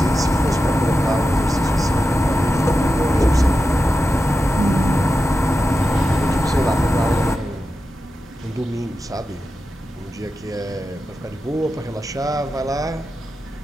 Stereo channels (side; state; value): both; normal; correlation 0.91